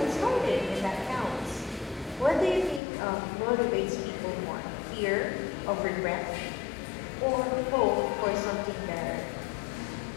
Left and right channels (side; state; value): right; drops out; at 2.8 s